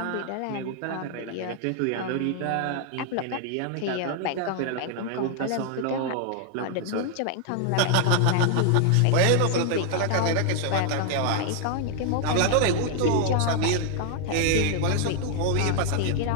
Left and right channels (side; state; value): both; different; correlation 0.00